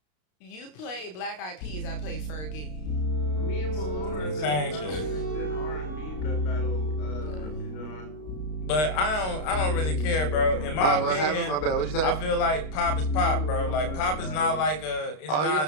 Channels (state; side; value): late; right; 33 ms